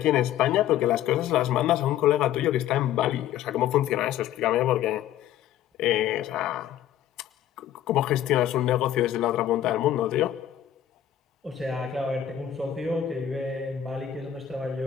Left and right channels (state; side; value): quieter; right; 11.1 dB